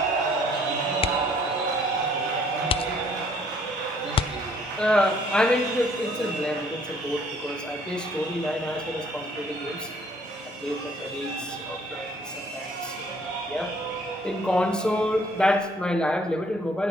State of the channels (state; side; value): normal; both; correlation 0.61